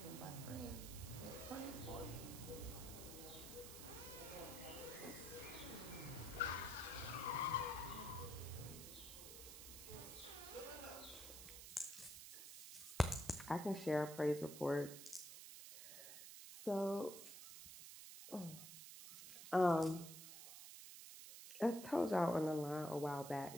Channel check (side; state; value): right; noise; hiss, 11 dB below the sound